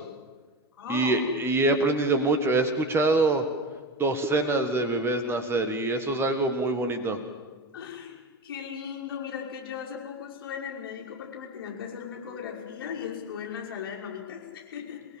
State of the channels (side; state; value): both; normal; correlation 0.24